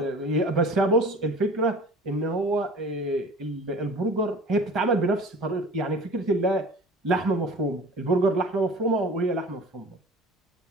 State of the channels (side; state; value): both; normal; correlation 0.42